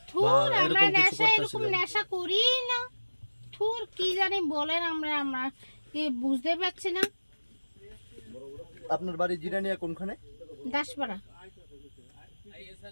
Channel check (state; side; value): inverted; both; correlation -1.00